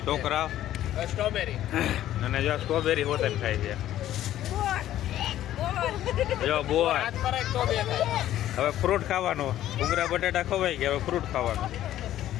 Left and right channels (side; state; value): right; quieter; 12.8 dB